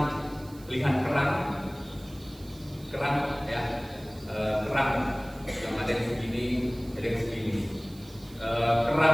lihat kerang ya, kerang yang ada yang segini, ada yang segini.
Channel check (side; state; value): right; noise; hiss, 23 dB below the sound